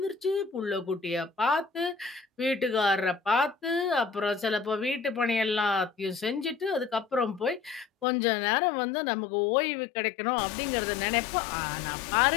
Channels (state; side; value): drops out; right; at 8.1 s